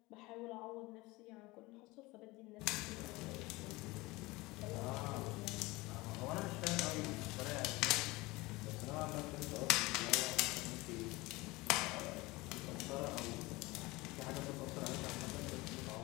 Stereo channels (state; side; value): quieter; right; 21.9 dB